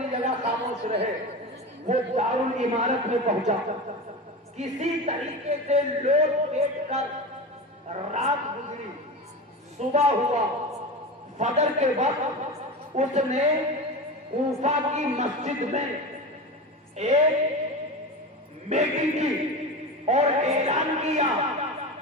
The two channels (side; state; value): both; normal; correlation 0.25